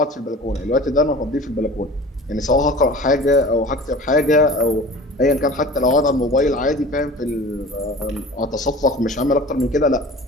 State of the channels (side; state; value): both; normal; correlation 0.40